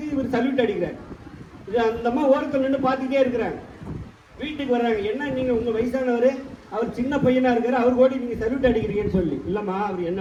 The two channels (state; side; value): identical; both; correlation 1.00